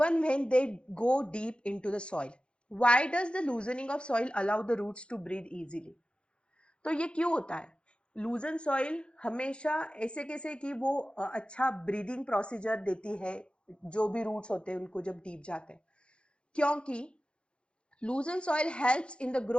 when they go deep into the soil. Why does the loosening of soil allow the roots to breathe easily? तो ये क्यों होता है, लूजन सॉइल हमेशा ऐसे कैसे कि वो अच्छा ब्रीदिंग प्रोसीजर देती है जो भी रूट्स होते हैं उनको जब डीप जाते हैं, क्योंकि loosened soil helps in the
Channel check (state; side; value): late; right; 0.057 ms